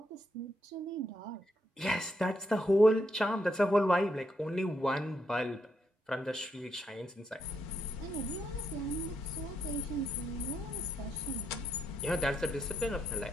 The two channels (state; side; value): normal; both; correlation 0.79